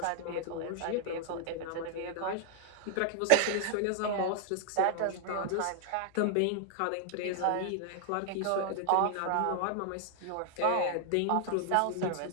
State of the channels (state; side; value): different; both; correlation 0.00